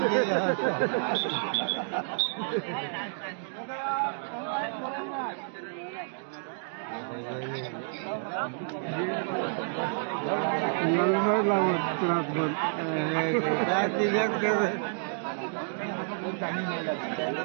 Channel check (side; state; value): left; silent; digital silence